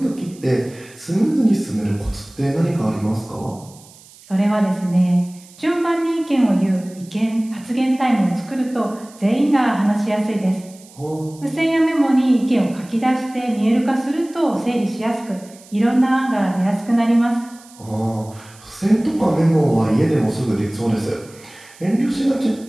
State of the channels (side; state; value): right; noise; hiss, 23 dB below the sound